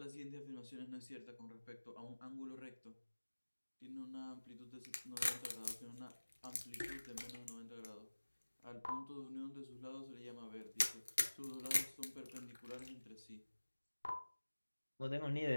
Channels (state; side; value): inverted; both; correlation -1.00